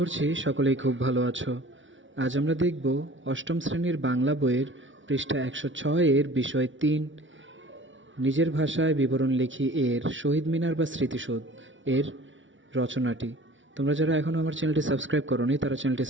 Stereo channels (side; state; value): left; late; 0.56 ms